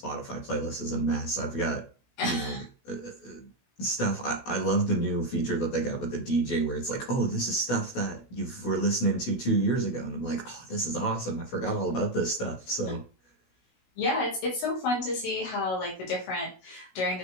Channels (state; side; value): late; right; 16 ms